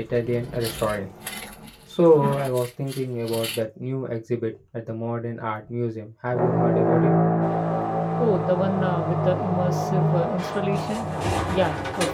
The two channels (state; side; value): identical; both; correlation 1.00